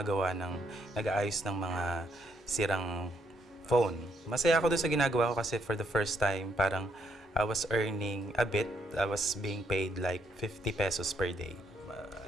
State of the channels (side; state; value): both; normal; correlation 0.74